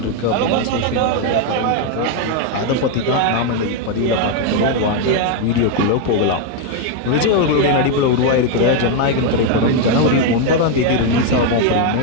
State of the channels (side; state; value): both; different; correlation 0.01